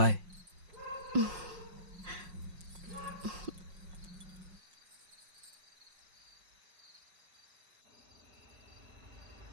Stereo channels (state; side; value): late; left; 5.5 ms